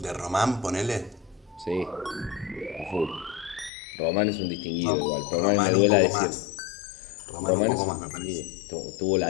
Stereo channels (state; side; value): drops out; right; at 3.7 s